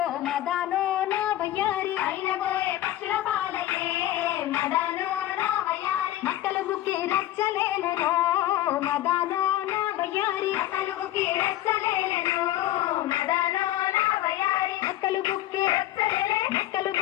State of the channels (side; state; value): right; quieter; 14.1 dB